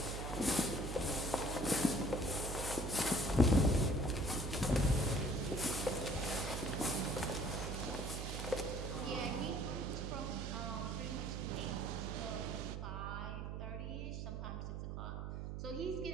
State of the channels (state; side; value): noise; right; hum, 5 dB below the sound